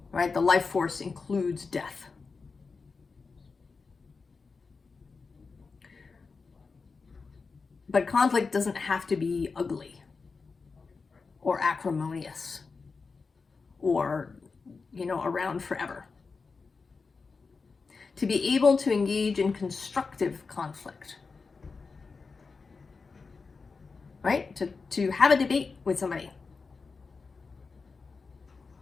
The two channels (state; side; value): quieter; right; 4.6 dB